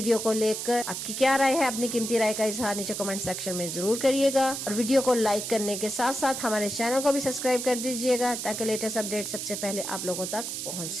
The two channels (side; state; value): right; noise; hiss, 5 dB below the sound